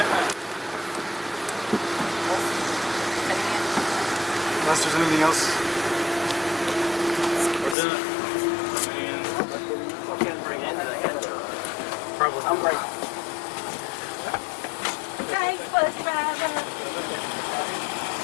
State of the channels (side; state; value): right; drops out; at 7.8 s